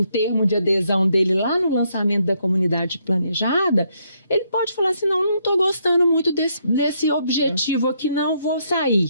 termo de adesão dele lá no lançamento da comunidade planejada, ele pode falar assim, não estou gostando muito desse objetivo aqui, não vou sair.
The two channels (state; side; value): inverted; both; correlation -0.74